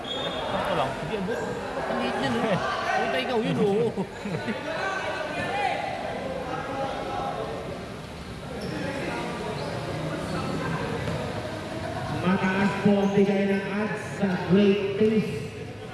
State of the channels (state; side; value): identical; both; correlation 1.00